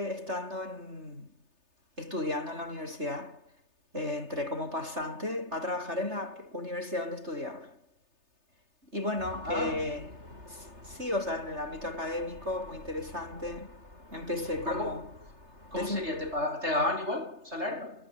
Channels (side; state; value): left; late; 3.3 ms